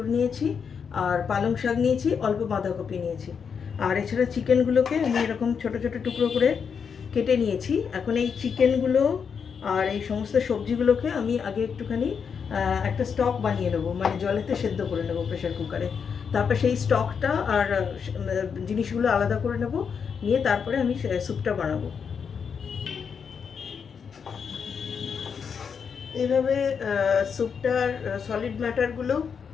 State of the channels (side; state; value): right; quieter; 6.5 dB